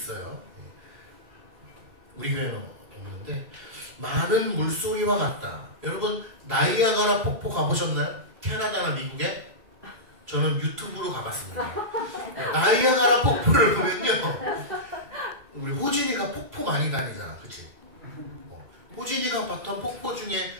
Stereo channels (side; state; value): left; late; 2.4 ms